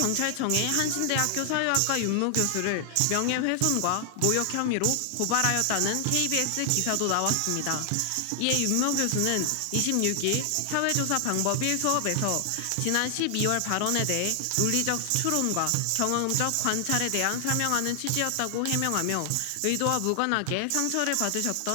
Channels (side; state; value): both; different; correlation 0.00